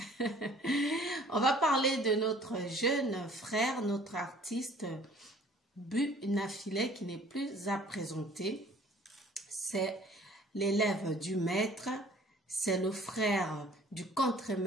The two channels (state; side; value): normal; both; correlation 0.53